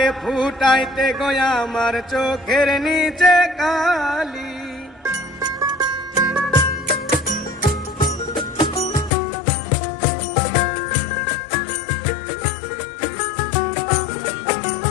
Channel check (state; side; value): drops out; right; at 9.1 s